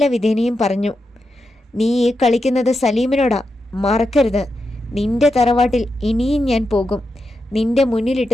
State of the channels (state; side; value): normal; both; correlation 0.87